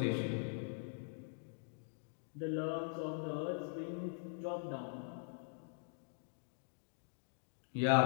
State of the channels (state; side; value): silent; right; digital silence